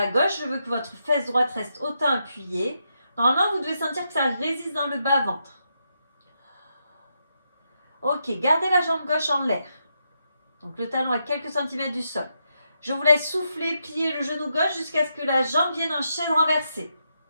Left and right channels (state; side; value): inverted; both; correlation -0.82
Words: gauche. Je veux que votre fesse droite reste autant appuyée. Normalement, vous devez sentir que ça résiste dans le bas-ventre. Ok, gardez la jambe gauche en l'air. Donc le talon à quelques centimètres du sol. Je vous laisse souffler, plier le genou gauche jusqu'à ce que la jambe vienne en chaise renversée.